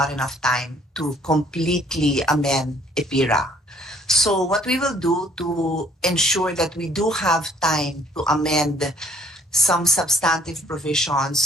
enough time to completely amend EPIRA. So what we will do to ensure that we do have time to amend some substantive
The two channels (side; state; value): both; normal; correlation 0.60